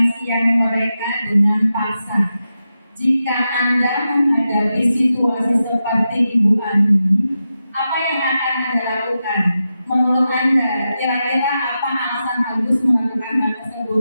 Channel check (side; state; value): both; inverted; correlation -0.89